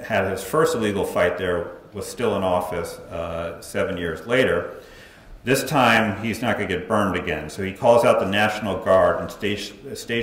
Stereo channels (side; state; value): both; identical; correlation 1.00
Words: his first illegal fight there, was still in office 7 years later. This time, he's not going to get burned again. So he calls out the National Guard and